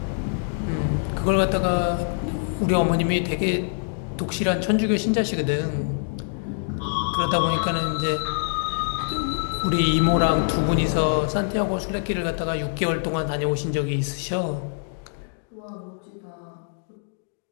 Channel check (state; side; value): silent; right; digital silence